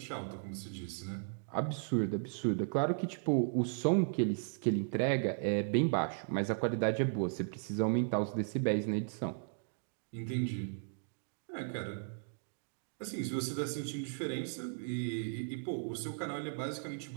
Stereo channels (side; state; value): left; silent; digital silence